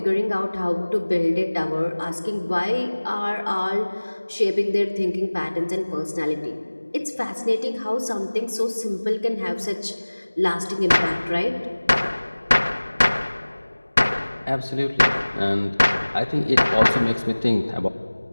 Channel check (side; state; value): both; inverted; correlation -1.00